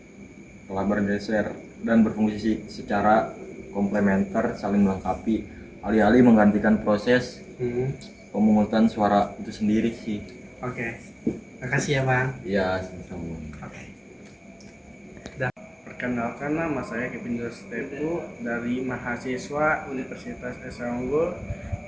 telah bergeser dan berfungsi secara komplementer, saling melengkapi, alih-alih menggantikan proses pemungutan suara itu sendiri sih. Oke, makasih ya Bang. Iya, sama-sama. Perkenalkan, nama saya Kevin Dostepu dari mahasiswa Universitas Esa Unggul.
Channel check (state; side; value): identical; both; correlation 1.00